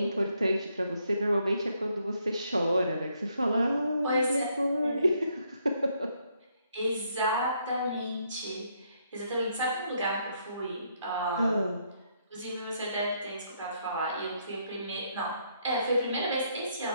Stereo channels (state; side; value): inverted; both; correlation -0.73